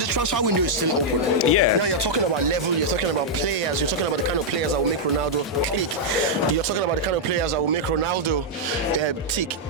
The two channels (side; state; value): both; normal; correlation -0.05